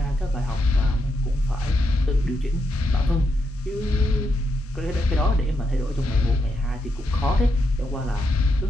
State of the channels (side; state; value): both; normal; correlation 0.82